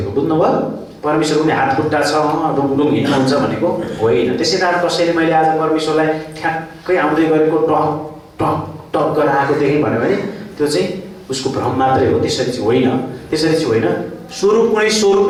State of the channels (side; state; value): both; identical; correlation 1.00